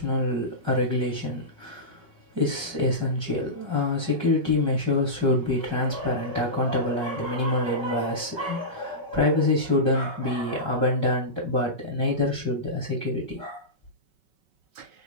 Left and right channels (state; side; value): late; left; 5.3 ms